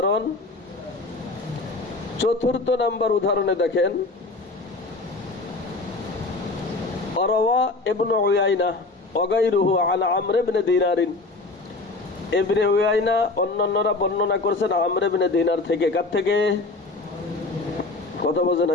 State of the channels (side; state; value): right; quieter; 3.4 dB